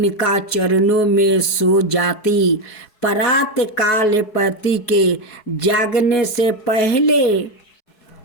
चरणों में सो जाती। प्रातः काल पति के जागने से पहले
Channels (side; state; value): right; late; 4.7 ms